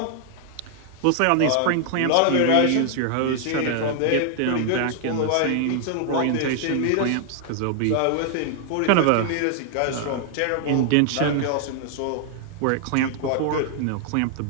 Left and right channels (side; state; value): both; different; correlation 0.00